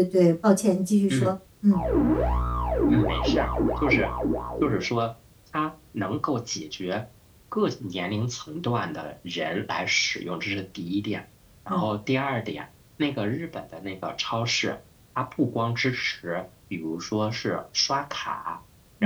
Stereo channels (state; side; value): identical; both; correlation 1.00